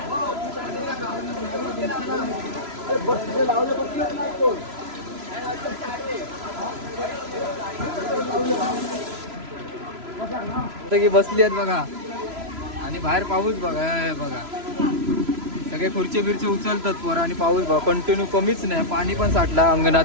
की बसली आहेत बघा. आणि बाहेर पाऊस बघा बघा. सगळे खुर्ची बिरची उचलतात पोरं आणि पाऊस बघा कंटिन्यू कमीच नाही. पाणी पण साठला अंगणात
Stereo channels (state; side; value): late; left; 3.0 ms